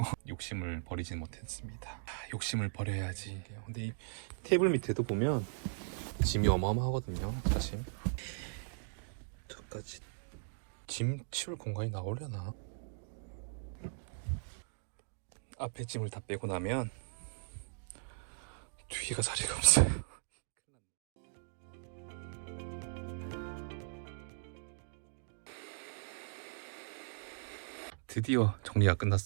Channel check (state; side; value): silent; left; digital silence